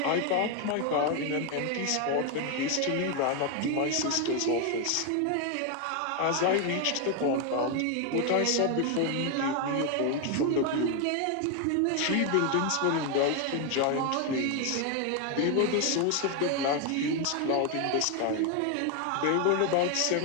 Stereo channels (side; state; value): both; different; correlation 0.01